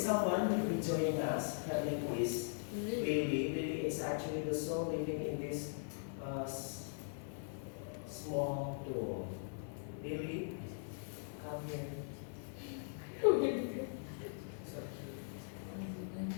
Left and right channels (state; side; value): silent; right; digital silence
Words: someone who will be joining us. Her name is Lily. Lily is actually the soul living in this small door. Lily, come here.